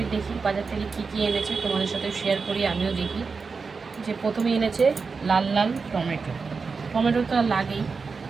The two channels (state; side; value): quieter; left; 4.8 dB